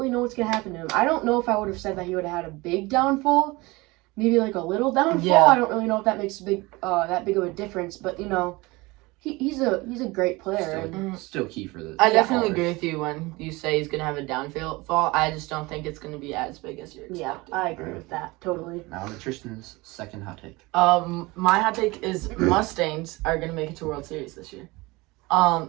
know what's gonna happen to him. I don't know if I would have said that he would have had a big downfall. Maybe like a little downfall. Yeah. I don't really know if that makes that big of a difference, but you know, he's a great player. Still key for the. I definitely agree with you when you say he's gonna have a downfall. I just don't think it's gonna be as big as you're expecting. Yeah, I agree with that totally. Now to Tristan's second hot take. My hot take is Mustangs are gonna make it to World Series this year.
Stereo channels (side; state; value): left; quieter; 22.8 dB